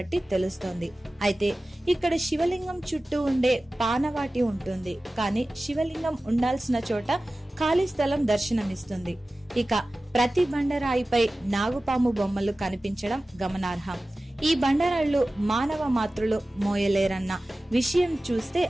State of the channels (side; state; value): both; normal; correlation 0.96